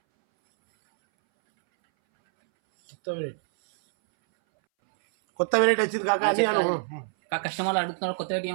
కొత్త వెరైటీ వచ్చింది కాక కస్టమర్లు అడుగుతున్నారు కొత్త వెరైటీ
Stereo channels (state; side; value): silent; left; 61 dB below the other